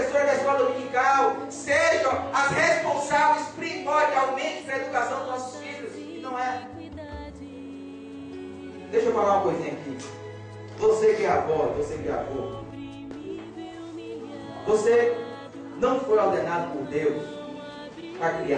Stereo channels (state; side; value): identical; both; correlation 1.00